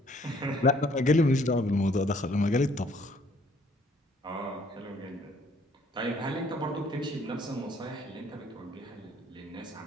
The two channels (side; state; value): both; normal; correlation 0.61